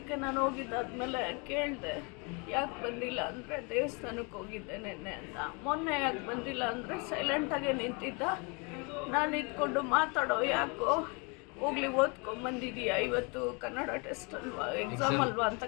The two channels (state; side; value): quieter; right; 31.8 dB